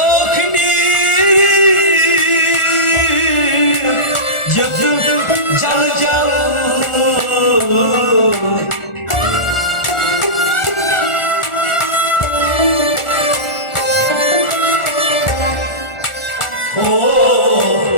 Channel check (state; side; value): late; right; 1.4 ms